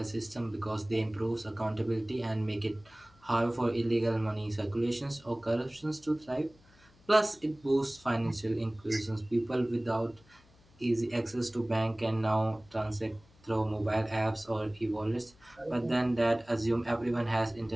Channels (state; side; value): noise; left; hum, 29 dB below the sound